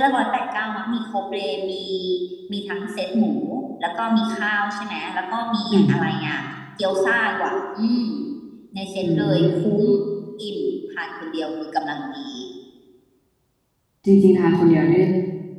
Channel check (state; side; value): identical; both; correlation 1.00